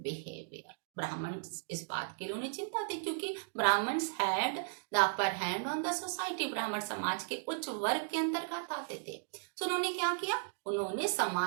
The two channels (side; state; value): left; silent; digital silence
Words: Brahmans इस बात के लिए उन्हें चिंता थी, क्योंकि Brahmans had the upper hand on the society. ब्राह्मण समाज के उच्च वर्ग के अंतर्गत आते थे। तो उन्होंने क्या किया? उन्होंने